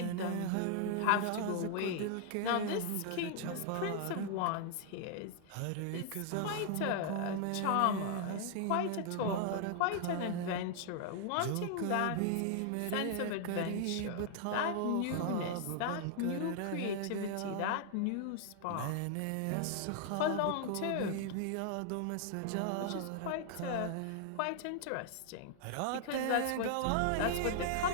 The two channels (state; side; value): different; both; correlation 0.00